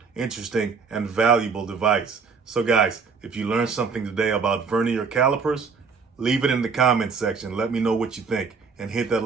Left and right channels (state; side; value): quieter; left; 5.3 dB